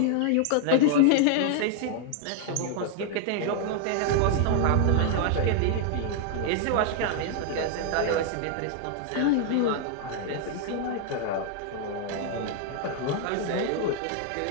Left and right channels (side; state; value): both; different; correlation 0.00